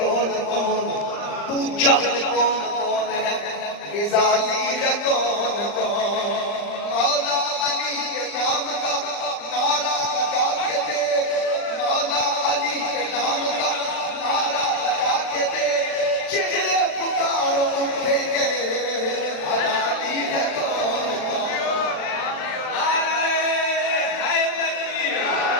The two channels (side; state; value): right; late; 39 ms